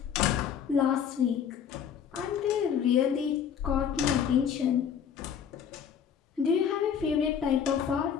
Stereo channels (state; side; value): quieter; right; 8.0 dB